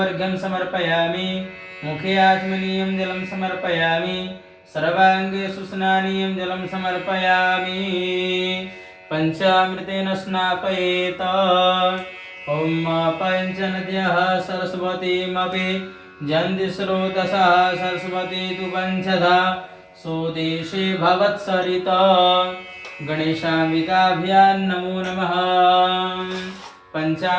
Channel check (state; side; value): identical; both; correlation 1.00